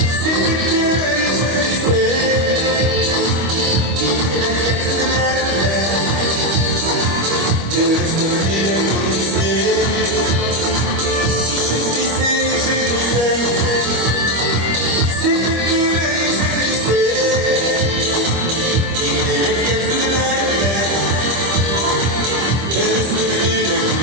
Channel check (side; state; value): left; late; 25 ms